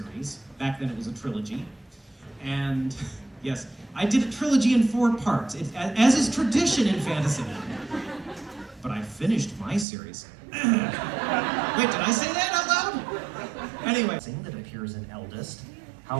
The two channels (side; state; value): left; drops out; at 9.9 s